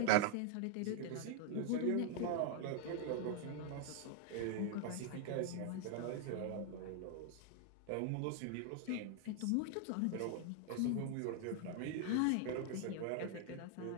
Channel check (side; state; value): both; different; correlation 0.00